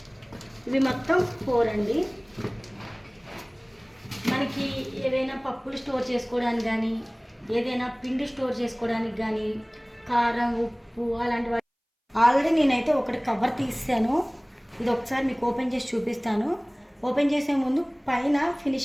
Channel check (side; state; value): both; identical; correlation 1.00